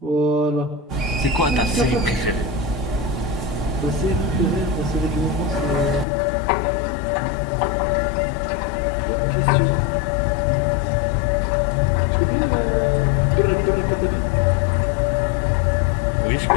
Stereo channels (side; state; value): right; drops out; at 6.1 s